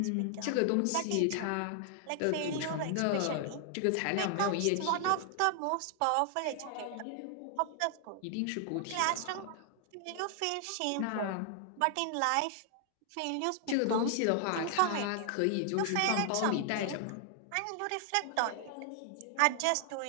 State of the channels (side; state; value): both; different; correlation 0.00